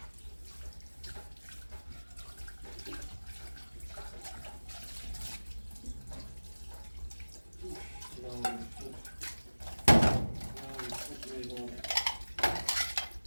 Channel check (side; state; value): both; inverted; correlation -1.00